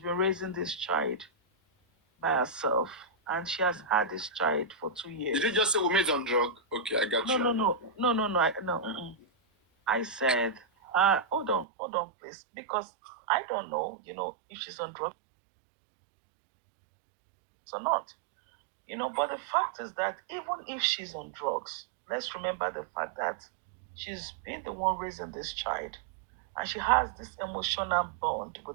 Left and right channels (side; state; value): left; drops out; at 11.7 s